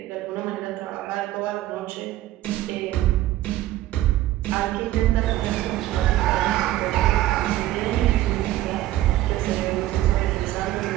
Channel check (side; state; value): left; quieter; 14.8 dB